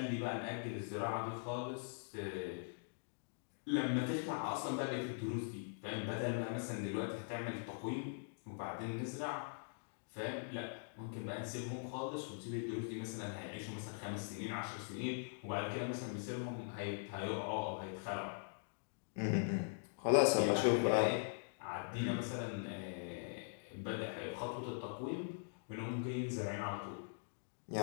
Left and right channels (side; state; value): right; silent; digital silence